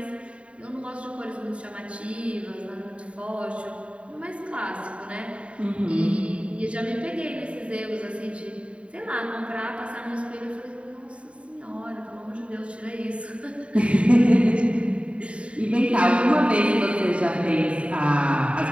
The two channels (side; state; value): left; late; 0.062 ms